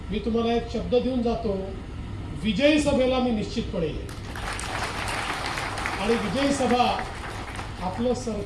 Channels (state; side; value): identical; both; correlation 1.00